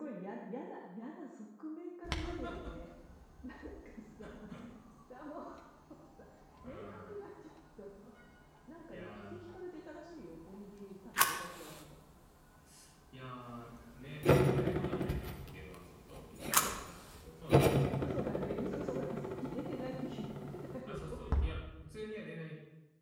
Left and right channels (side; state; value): both; identical; correlation 1.00